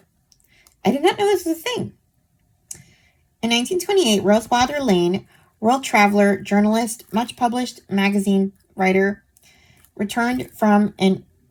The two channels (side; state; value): both; identical; correlation 1.00